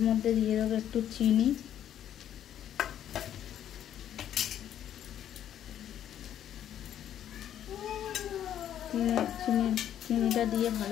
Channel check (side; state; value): right; quieter; 10.6 dB